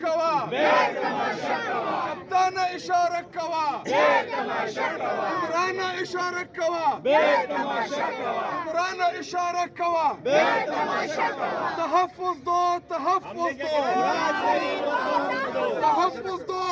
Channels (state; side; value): identical; both; correlation 1.00